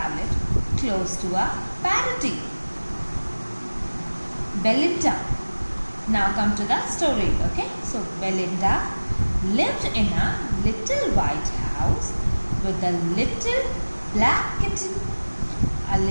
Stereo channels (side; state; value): both; inverted; correlation -1.00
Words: close to a parody. Belinda. Now come to the story, okay? So Belinda lived in a little white house with a little black kitten, a